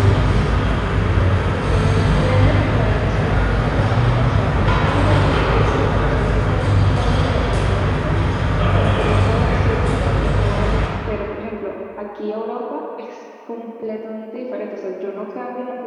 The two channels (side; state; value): both; identical; correlation 1.00